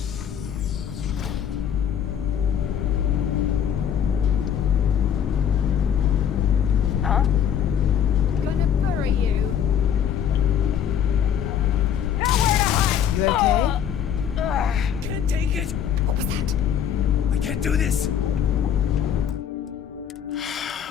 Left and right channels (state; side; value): quieter; right; 8.9 dB